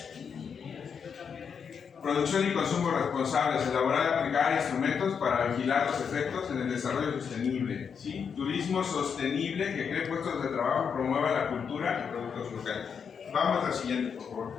Producción y consumo responsables, elaborar y aplicar instrumentos para vigilar los efectos en el desarrollo sostenible, ¿sí? Turismo sostenible que cree puestos de trabajo, promueva la cultura y productos locales. Vamos a la siguiente, por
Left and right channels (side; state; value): right; quieter; 6.7 dB